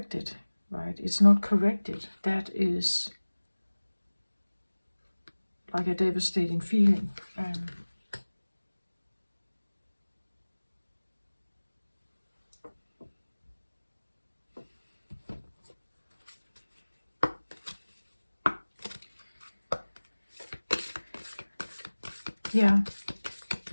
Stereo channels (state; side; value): inverted; both; correlation -1.00